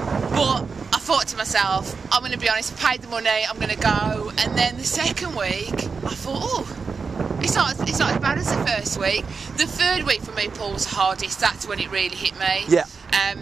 but I thought to myself, I'm going to be honest, I paid the money, I'm going to go. And then the second week, I thought, oh, it's not as bad as the first week. The third week for me, Paul, was the hardest. That's when it really hit me. Yeah.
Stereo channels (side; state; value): left; quieter; 5.1 dB